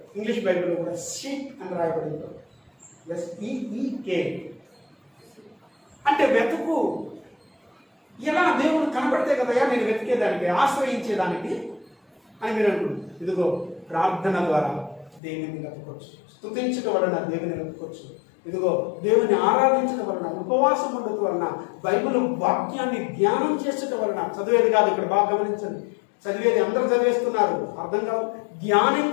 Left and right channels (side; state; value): right; drops out; at 15.2 s